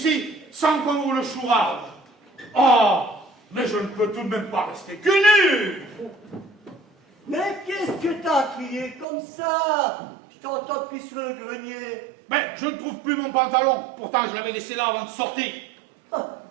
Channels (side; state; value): left; drops out; at 9.1 s